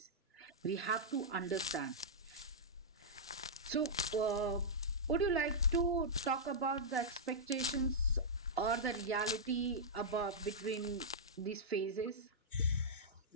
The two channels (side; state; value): both; normal; correlation -0.10